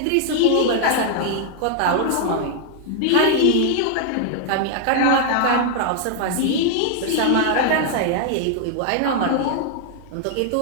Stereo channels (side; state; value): both; different; correlation 0.00